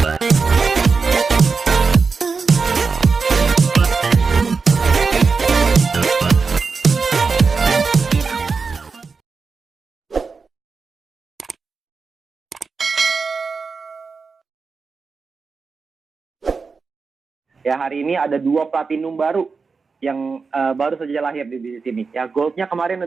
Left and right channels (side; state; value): left; quieter; 4.8 dB